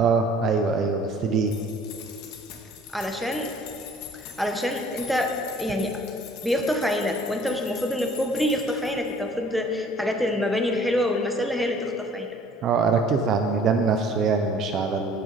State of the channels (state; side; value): normal; both; correlation 0.53